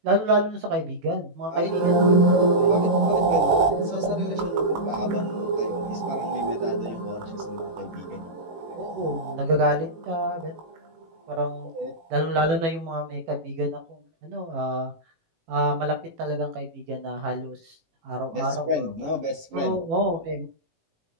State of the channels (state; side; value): late; left; 18 ms